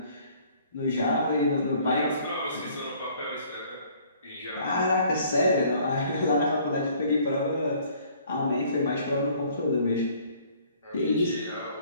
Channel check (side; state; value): both; inverted; correlation -0.58